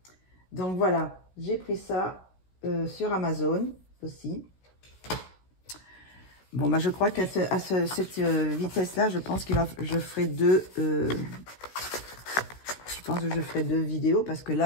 Donc voilà, j'ai pris ça sur Amazon aussi. Bon, bah, je crois qu'à cette vitesse-là, je pense je ferai deux. Je pense que je ferai 2 vidéos parce que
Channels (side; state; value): right; late; 16 ms